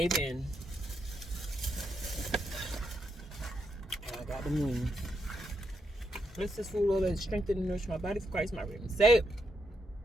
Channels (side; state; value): both; normal; correlation 0.81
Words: in. And I got the moon. Bless this food, Lord, that strengthen and nourish my body for Christ, my redeemer. Say it.